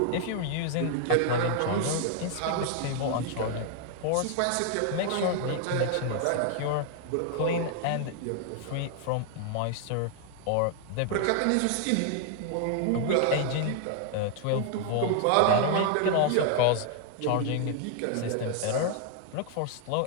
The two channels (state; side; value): different; both; correlation 0.00